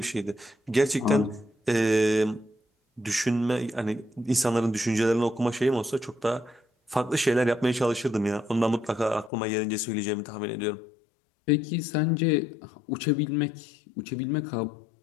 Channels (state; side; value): drops out; right; at 9.3 s